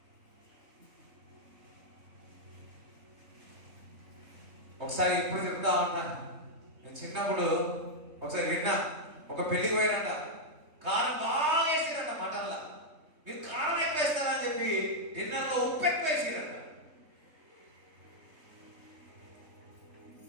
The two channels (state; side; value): late; left; 3.2 ms